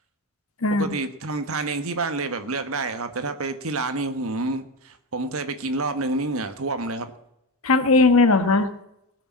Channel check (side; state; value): both; normal; correlation 0.18